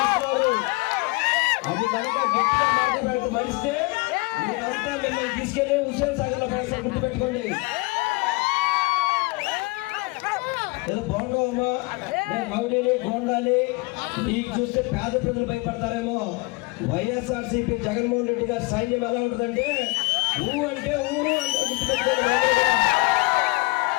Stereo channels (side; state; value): right; quieter; 25.9 dB